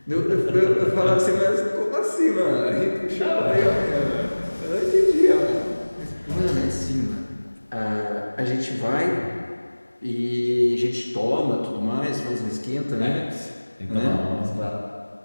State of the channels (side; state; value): both; inverted; correlation -1.00